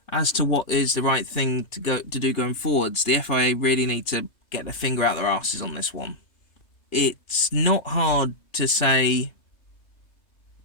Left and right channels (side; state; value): right; late; 2.6 ms